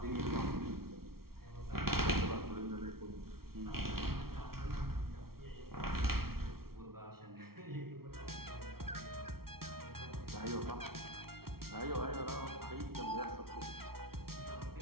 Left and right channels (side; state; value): left; late; 0.94 ms